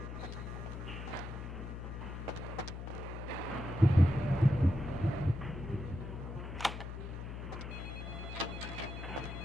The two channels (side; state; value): left; noise; hum, 7 dB below the sound